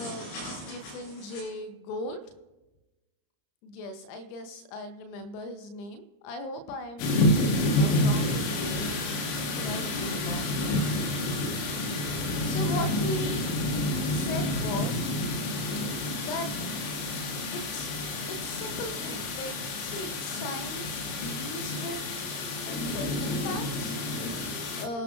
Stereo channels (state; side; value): late; right; 34 ms